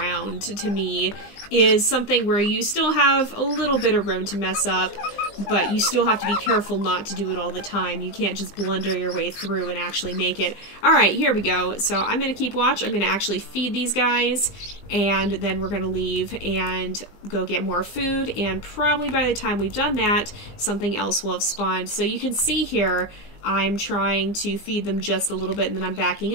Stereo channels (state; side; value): late; right; 20 ms